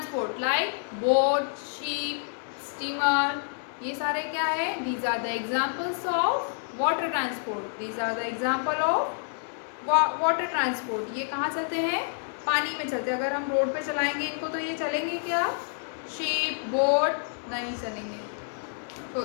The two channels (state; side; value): silent; right; digital silence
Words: like boat, ship, steamer. ये सारे क्या है? These are the examples of water transport. These are the example of water transport. ये कहाँ चलते हैं? पानी में चलते हैं. अगर हम रोड पे चलाएंगे इनको तो ये चलेंगे क्या? शिप, बोट नहीं चलेंगे. तो